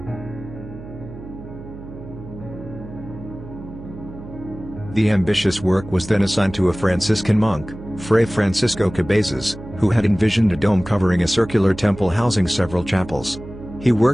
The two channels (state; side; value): noise; right; hum, 14 dB below the sound